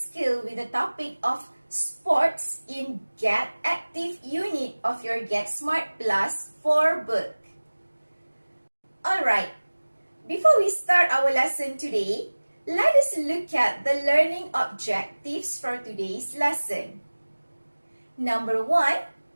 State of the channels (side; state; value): both; inverted; correlation -1.00